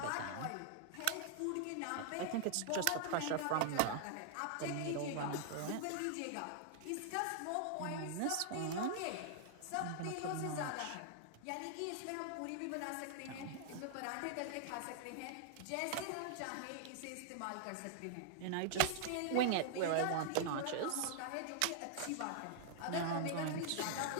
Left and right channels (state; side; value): different; both; correlation -0.01